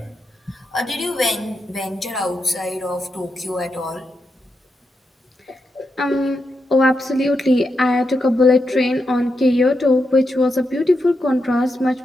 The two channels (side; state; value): both; normal; correlation 0.85